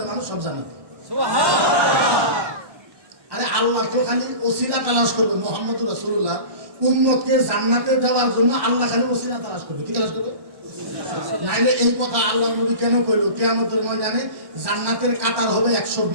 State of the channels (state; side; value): late; left; 1.6 ms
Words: মানুষ সব জান্নাতে। আরে আল্লাহ তো খালি ওসিলা তালাশ করবে, মুহাম্মদুর রাসূলুল্লাহ উম্মতকে জান্নাতে দেওয়ার জন্য আল্লাহ খালি ওসিলা তালাশ করবে। কি তালাশ করবে? নাইলে এই কথা আল্লাহ নবী কেন কইলো কিয়ামতের ময়দানে জান্নাতের কাতার হবে